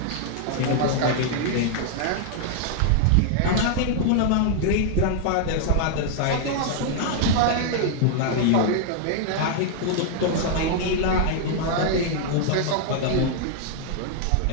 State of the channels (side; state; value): both; different; correlation 0.00